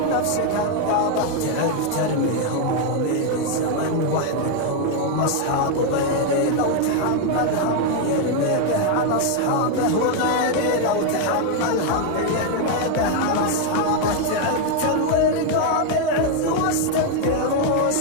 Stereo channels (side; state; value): both; different; correlation 0.01